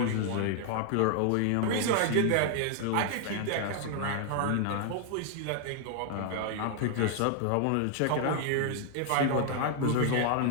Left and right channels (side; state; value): both; different; correlation 0.00